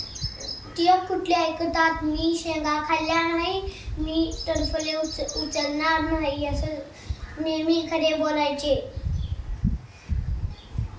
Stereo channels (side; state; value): both; identical; correlation 1.00